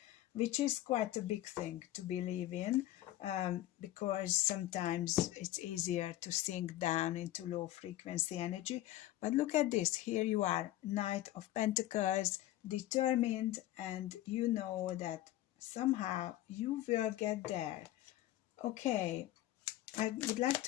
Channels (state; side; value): quieter; right; 14.8 dB